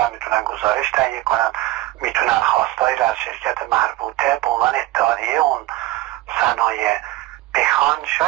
میتونن گزارش تهیه کنن، میتونن خواستایی را از شرکت مربوطه به عنوان اتحادیه اون صنایع بخوان،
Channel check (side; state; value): left; quieter; 17.1 dB